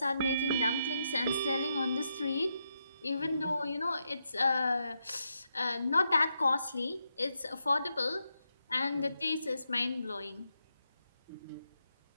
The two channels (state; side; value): inverted; both; correlation -0.83